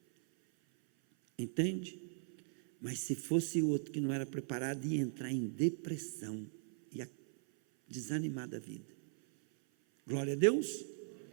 Entende? Mas se fosse outro que não era preparado, ia entrar em depressão, ia desanimar da vida. Glória a Deus.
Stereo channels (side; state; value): left; silent; 52 dB below the other